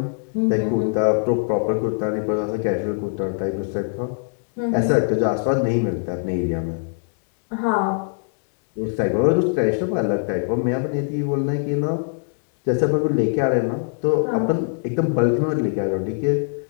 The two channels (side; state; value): right; silent; digital silence